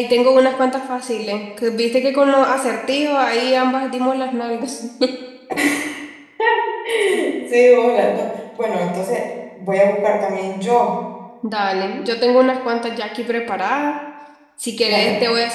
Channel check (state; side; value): identical; both; correlation 1.00